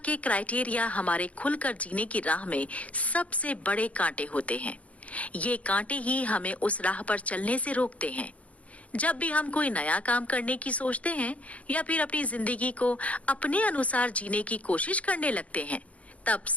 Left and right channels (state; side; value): late; right; 0.066 ms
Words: क्राइटेरिया हमारे खुलकर जीने की राह में सबसे बड़े कांटे होते हैं। ये कांटे ही हमें उस राह पर चलने से रोकते हैं। जब भी हम कोई नया काम करने की सोचते हैं या फिर अपनी जिंदगी को अपने अनुसार जीने की कोशिश करने लगते हैं, तब